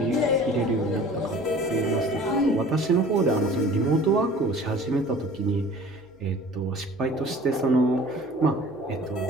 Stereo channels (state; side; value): noise; left; hum, 29 dB below the sound